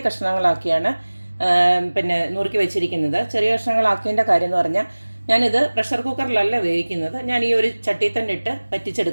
കഷ്ണങ്ങളാക്കിയാണ് നുറുക്കി വെച്ചിരിക്കുന്നത്. ചെറിയ കഷ്ണങ്ങളാക്കിയതിൻ്റെ കാര്യം എന്ന് പറഞ്ഞാൽ ഞാനിത് പ്രഷർ കുക്കറിലല്ല വേവിക്കുന്നത്, ഞാൻ ഈ ഒരു ചട്ടിയിൽ തന്നെ ഇട്ട്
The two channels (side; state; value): both; inverted; correlation -1.00